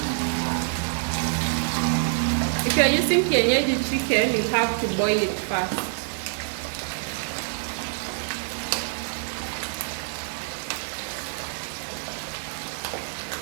If you are using kienyeji chicken, you have to boil it first.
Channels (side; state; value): left; silent; digital silence